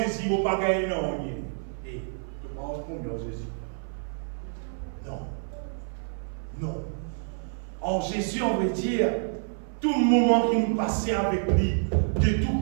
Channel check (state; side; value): silent; left; 57 dB below the other